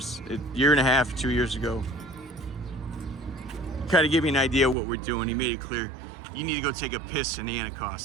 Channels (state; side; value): drops out; left; at 4.8 s